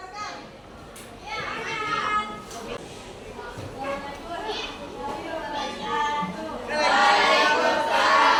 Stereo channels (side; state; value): both; identical; correlation 1.00